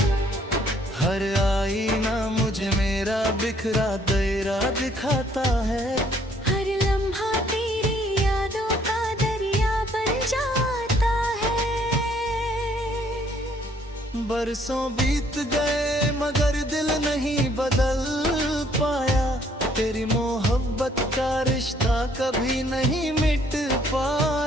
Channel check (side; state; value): both; normal; correlation 0.64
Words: हर आईना मुझे मेरा बिखरा दायरा दिखाता है। हर लम्हा तेरी यादों का दरिया बन जाता है। बरसों बीत गए मगर दिल नहीं बदल पाया। तेरी मोहब्बत का रिश्ता कभी नहीं मिट